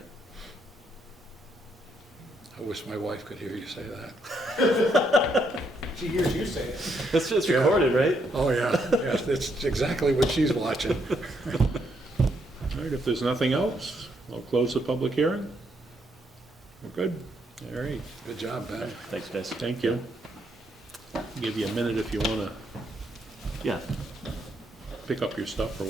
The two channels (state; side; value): normal; both; correlation 0.75